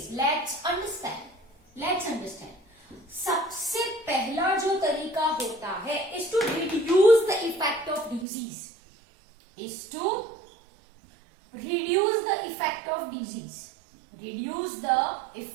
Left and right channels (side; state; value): left; drops out; at 8.2 s